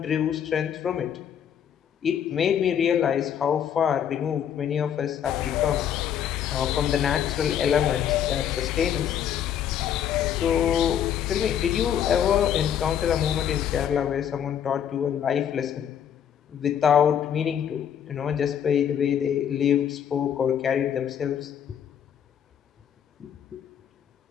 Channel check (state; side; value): quieter; right; 9.1 dB